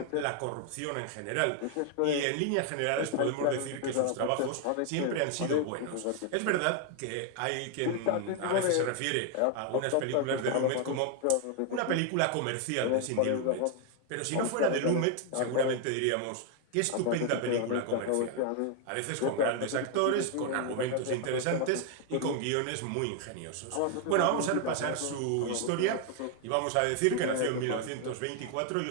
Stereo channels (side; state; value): both; different; correlation 0.00